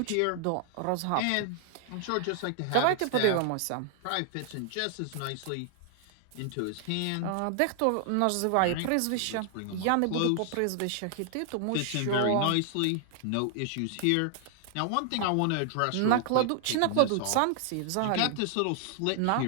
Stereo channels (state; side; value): different; both; correlation 0.00